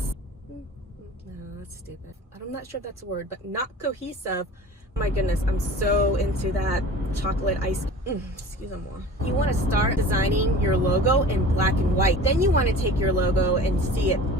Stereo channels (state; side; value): normal; both; correlation 0.40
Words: No, that's stupid. I'm not sure if that's a word, but not cohesive. Oh my goodness, I'm so into that chocolate ice. Excuse me. You want to start designing your logo in black and white. Then you want to take your logo and see it